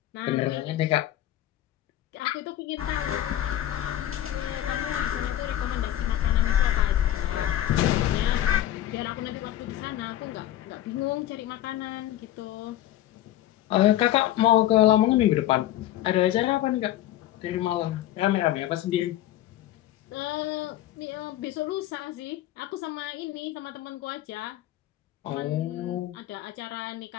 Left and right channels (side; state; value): right; quieter; 13.3 dB